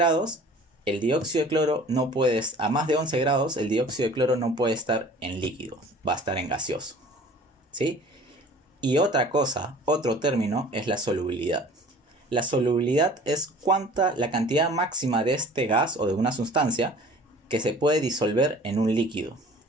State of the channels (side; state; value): both; normal; correlation 0.47